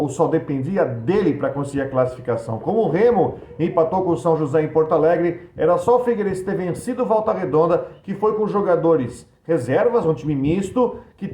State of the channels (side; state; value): both; identical; correlation 1.00